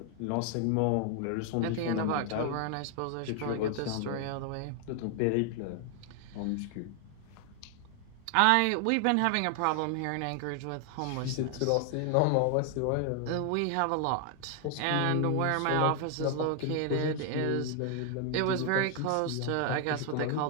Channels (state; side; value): different; both; correlation 0.00